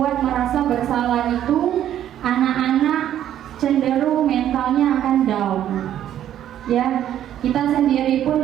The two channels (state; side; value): quieter; left; 11.1 dB